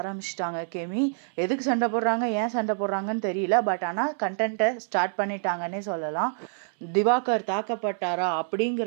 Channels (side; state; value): left; silent; 60 dB below the other